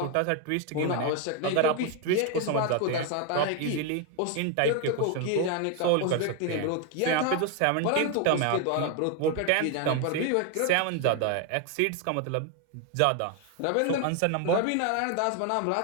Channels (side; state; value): both; different; correlation 0.01